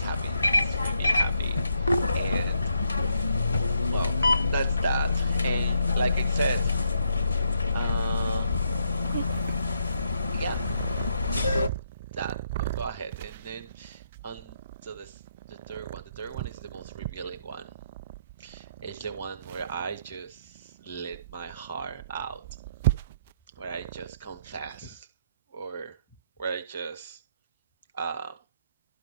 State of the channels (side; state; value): both; inverted; correlation -0.76